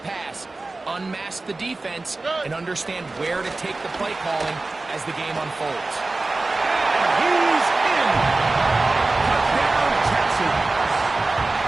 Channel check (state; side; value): quieter; left; 3.3 dB